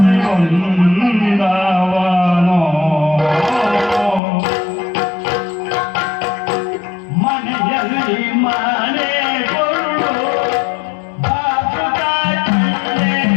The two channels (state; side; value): drops out; right; at 4.2 s